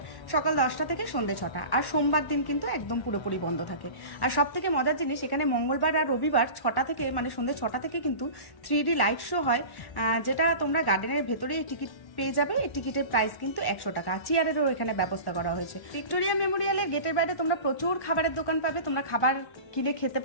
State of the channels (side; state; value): right; late; 1.1 ms